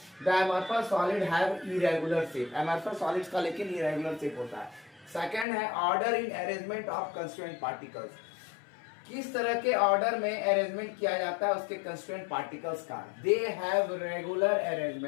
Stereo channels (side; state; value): right; drops out; at 5.5 s